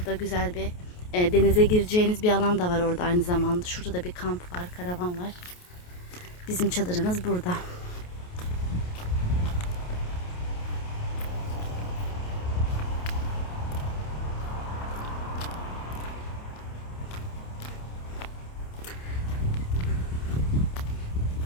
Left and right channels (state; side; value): late; right; 28 ms